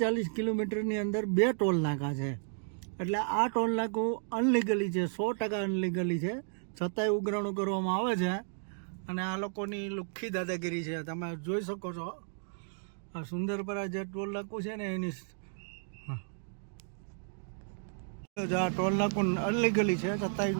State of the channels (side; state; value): left; silent; digital silence